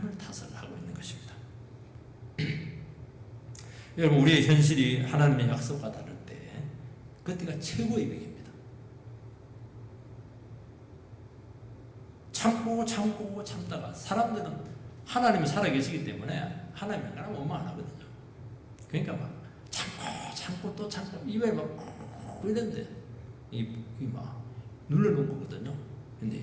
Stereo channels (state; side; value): identical; both; correlation 1.00